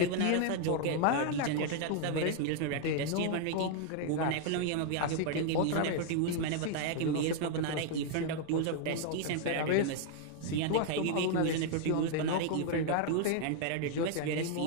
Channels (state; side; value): different; both; correlation 0.00